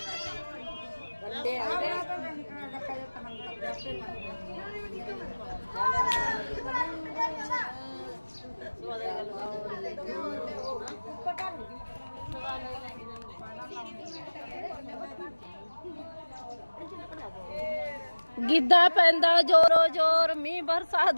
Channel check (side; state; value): both; inverted; correlation -1.00